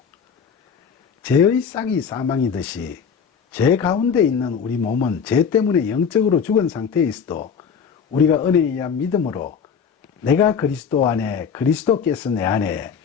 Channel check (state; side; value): quieter; right; 6.7 dB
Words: 죄의 싹이 사망이듯이 죄 가운데 있는 우리 몸은 죄 때문에 영적으로 죽은 상태에 있어도 우리가 은혜에 의한 믿음으로 내가 그리스도 안에 그리스도께서 내 안에